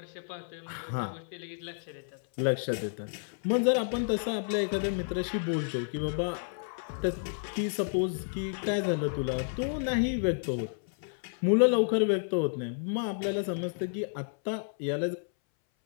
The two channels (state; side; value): silent; right; 57 dB below the other